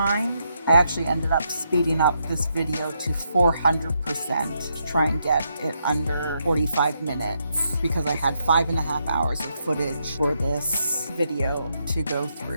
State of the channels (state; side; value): inverted; both; correlation -0.79